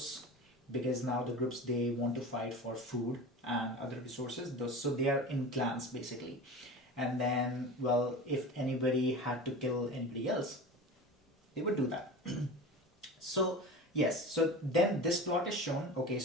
because now the groups, they want to fight for food and other resources. So they are in clans basically. And then, well, if anybody had to kill anybody else, they would do that. So yes, so then this plot is shown. Okay,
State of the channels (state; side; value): normal; both; correlation 0.32